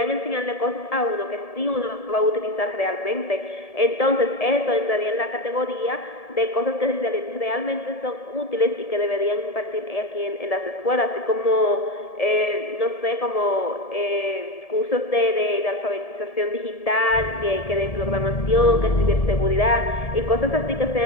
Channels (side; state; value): right; late; 1.7 ms